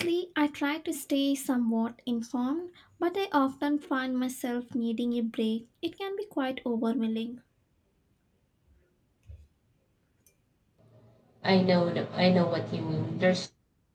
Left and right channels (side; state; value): both; identical; correlation 1.00